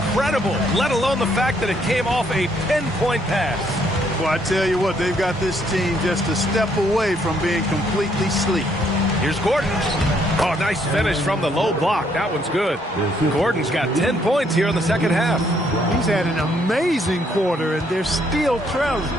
let alone the fact that it came off a pinpoint pass. Well, I tell you what, they've got this team just a step away from being completely sleek. Here's Gordon. Oh, nice finish from the low block. That one's good. Gordon's got 10 points here in the second half. He's had an amazing quarter, and they're still trailing.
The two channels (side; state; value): both; normal; correlation 0.69